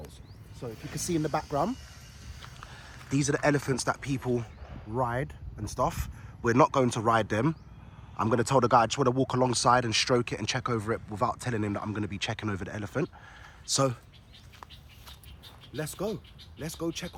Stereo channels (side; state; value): both; identical; correlation 1.00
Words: So if you can see in the background, these are the elephants that people ride and stuff. We're not going to ride them. I'm going to tell the guy I just want to walk alongside and stroke it and check over it without telling him that I'm going to be checking over the elephant. So let's go. Let's go check